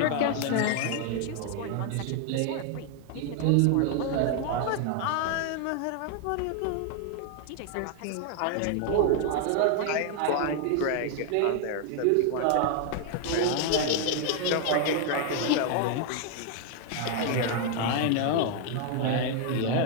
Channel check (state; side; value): different; both; correlation 0.00